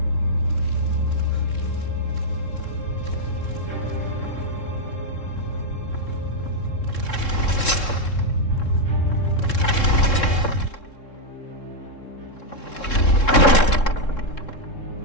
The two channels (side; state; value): right; late; 3.7 ms